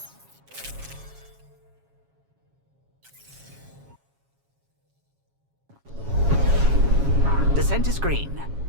Descent is green.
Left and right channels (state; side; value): late; left; 7.3 ms